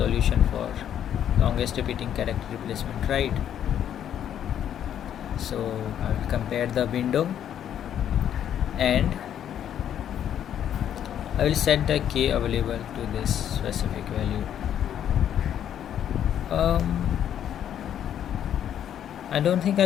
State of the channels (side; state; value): right; quieter; 10.0 dB